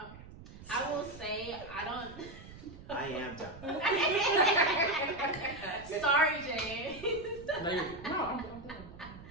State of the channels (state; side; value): noise; right; rumble, 16 dB below the sound